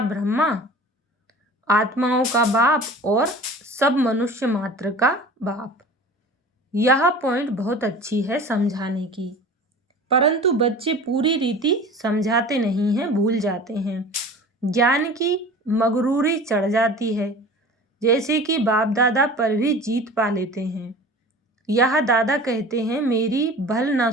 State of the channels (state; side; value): normal; both; correlation 0.39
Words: ब्रह्मा आत्माओं का बाप और सब मनुष्य मात्र का बाप। यह पॉइंट बहुत अच्छी है समझाने की, परंतु बच्चे पूरी रीति समझाते नहीं हैं, भूल जाते हैं। ज्ञान की मगरूरी चढ़ जाती है, जैसे कि बाप दादा पर भी जीत पा लेते हैं। यह दादा कहते हैं, मेरी भल ना